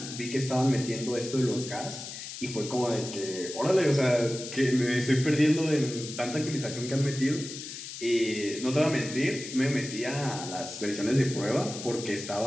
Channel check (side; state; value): left; noise; hiss, 10 dB below the sound